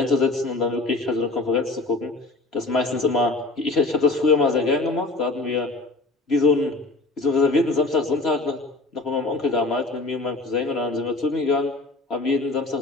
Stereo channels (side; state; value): right; quieter; 3.1 dB